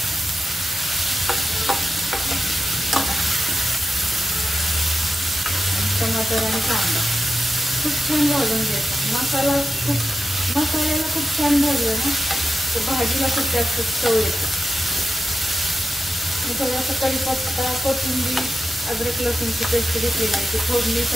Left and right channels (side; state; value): both; normal; correlation 0.90